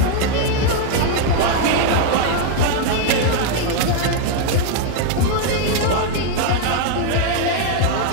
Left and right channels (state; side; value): different; both; correlation 0.01